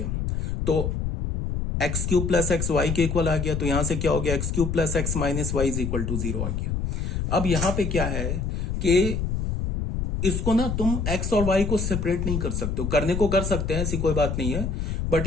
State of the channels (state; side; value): noise; left; rumble, 1 dB below the sound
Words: तो x cube plus x y के इक्वल आ गया, तो यहां से क्या हो गया, x cube plus x minus y is equal to 0 आ गया। अब यहां पे क्या है कि इसको ना तुम x और y को सेपरेट नहीं कर सकते हो, करने को कर सकते हैं, ऐसी कोई बात नहीं है, बट